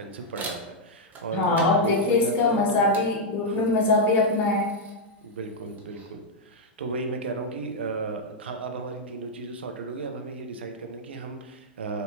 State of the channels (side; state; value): both; normal; correlation -0.03